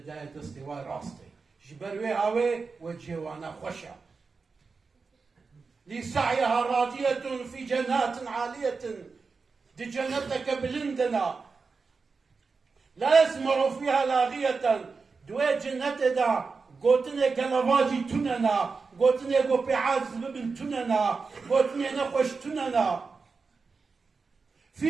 دا دستواء راستي جبروي هاوي وجهه وانا خشع لسعيها راضية في جنات عالية دي جنتك بلندنا لا يسمع فيها لاغية دوي جنت دا قوتني قلواجي تننا قوتني قوبيعات زببن تننا قوتني نخوش تننا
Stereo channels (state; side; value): quieter; left; 4.6 dB